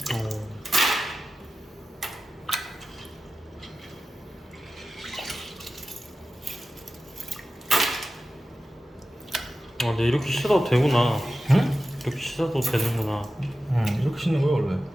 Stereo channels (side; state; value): both; normal; correlation 0.93